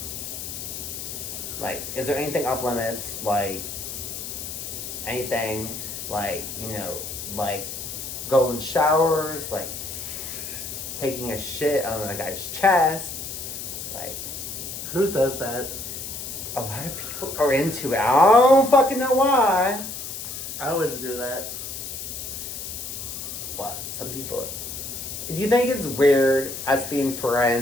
Like, is there anything off limits? Like, anything, like, like golden showers, like taking a shit on a guy's chest, like. Who does that? A lot of people are into it. I don't fucking know why. I wouldn't do that. But some people. Do you think it's weird us being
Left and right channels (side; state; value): left; noise; hiss, 7 dB below the sound